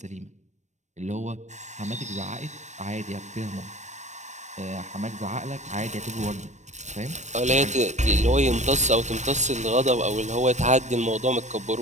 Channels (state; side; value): late; left; 0.34 ms